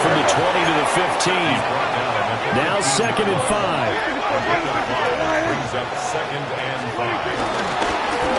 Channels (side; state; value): both; identical; correlation 1.00